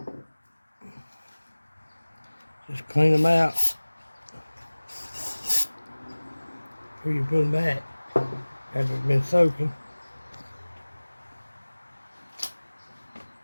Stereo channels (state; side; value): inverted; both; correlation -1.00